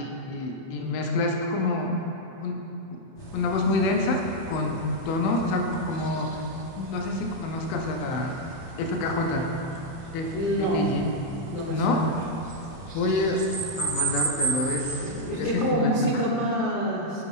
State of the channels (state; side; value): late; right; 30 ms